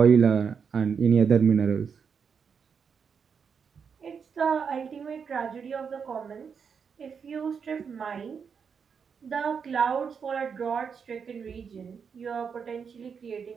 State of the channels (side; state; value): left; quieter; 6.4 dB